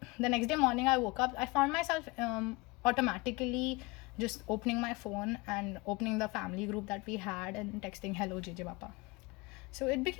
next day morning I woke up, I found myself automatically just opening my phone and opening the family group that we had and texting, hello JJ Papa. So it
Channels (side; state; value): right; quieter; 24.4 dB